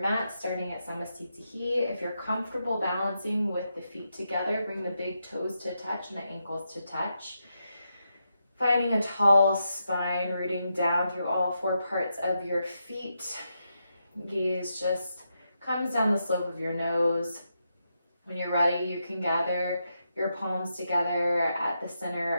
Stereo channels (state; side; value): inverted; both; correlation -0.84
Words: mat, starting at Samastitihi. If you're comfortable balancing with the feet together, bring the big toes to touch and the ankles to touch. Finding a tall spine, rooting down through all four parts of your feet. Gaze just comes down the slope of your nose. When you're ready, you can gather your palms together at the